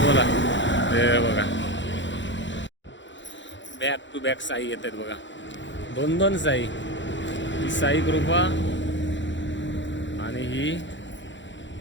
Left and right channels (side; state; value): right; late; 0.54 ms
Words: बोला, ते बघा, बॅक टू बॅक साई येत आहेत बघा, 2-2 साई. ही साई कृपा आणि ही